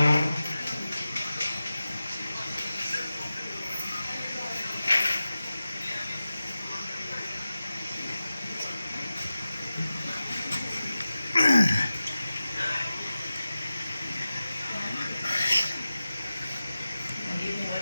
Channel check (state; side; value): inverted; both; correlation -0.94